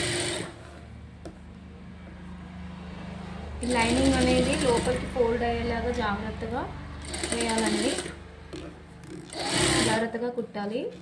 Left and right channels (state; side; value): identical; both; correlation 1.00